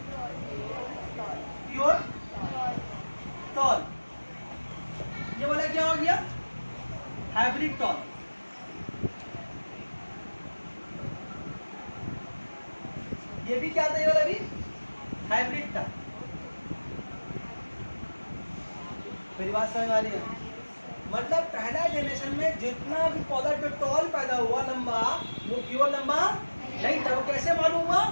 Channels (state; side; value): inverted; both; correlation -1.00